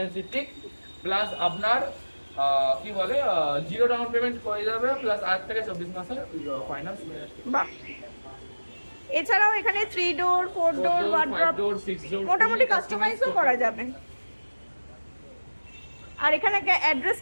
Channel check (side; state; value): both; inverted; correlation -1.00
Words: plus আপনার কি বলে 0 ডাউন পেমেন্ট করে যাবে, প্লাস 8 থেকে 24 মাসের ফাইন্যান্স। বাহ। এছাড়াও এখানে 3 ডোর 4 ডোর ওয়ার্ড্রপ মোটামুটি কাস্টমাইজও করা যাবে। আর এখানে